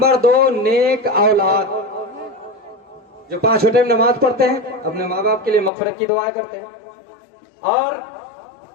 2 नेक औलाद, जो 5 टाइम नमाज पढ़ते हैं, अपने माँ बाप के लिए मग़फ़िरत की दुआएं करते हैं, और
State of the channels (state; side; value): drops out; right; at 5.7 s